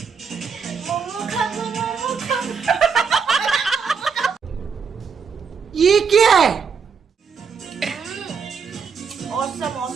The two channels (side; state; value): left; quieter; 6.0 dB